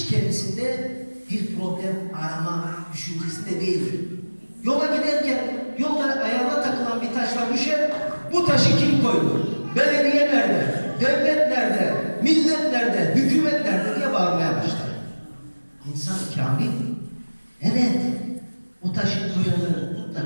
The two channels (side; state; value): both; inverted; correlation -1.00